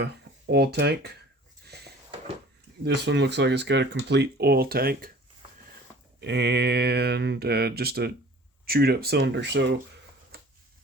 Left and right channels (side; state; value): both; normal; correlation 0.47